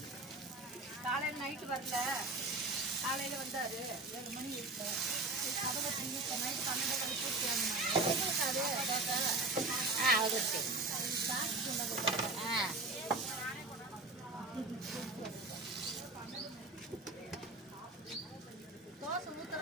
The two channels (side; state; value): left; quieter; 3.1 dB